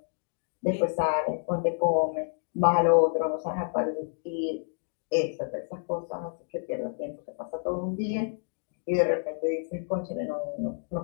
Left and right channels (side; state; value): right; silent; digital silence